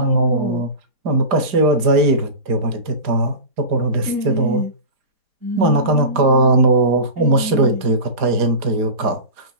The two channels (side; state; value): left; late; 4.9 ms